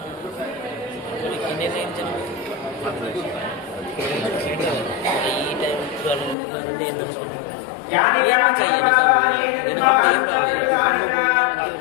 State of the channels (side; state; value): right; drops out; at 6.4 s